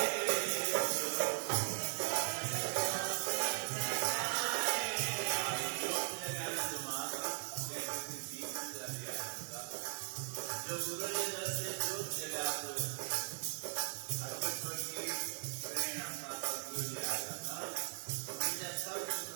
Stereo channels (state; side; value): silent; left; digital silence